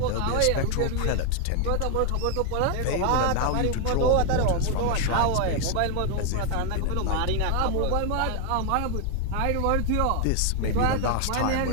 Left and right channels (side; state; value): both; different; correlation 0.00